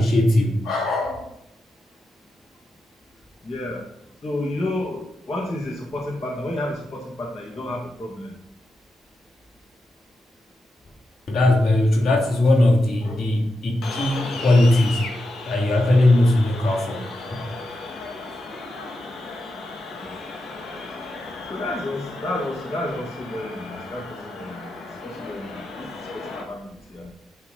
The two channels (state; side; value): normal; both; correlation 0.88